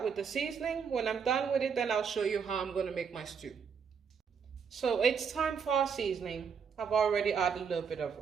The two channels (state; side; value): quieter; left; 6.4 dB